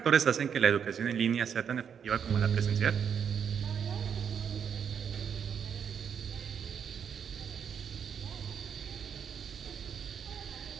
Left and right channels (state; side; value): quieter; left; 7.6 dB